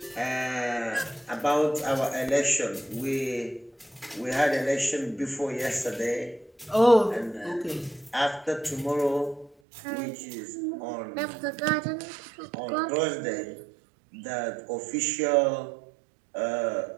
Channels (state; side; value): drops out; left; at 9.6 s